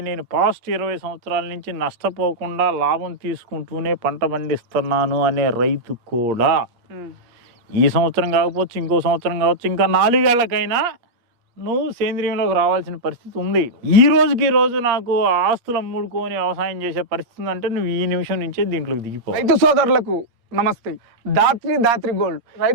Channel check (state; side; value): late; left; 8.5 ms